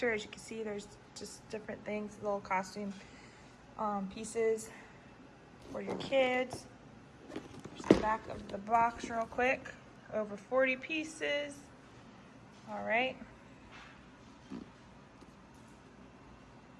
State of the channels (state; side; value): identical; both; correlation 1.00